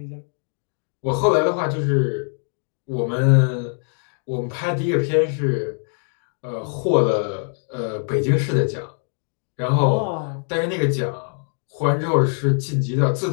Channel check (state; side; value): silent; right; 56 dB below the other